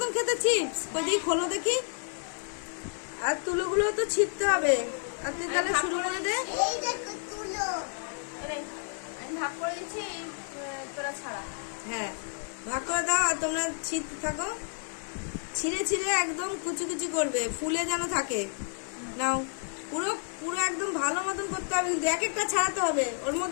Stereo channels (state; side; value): silent; right; 58 dB below the other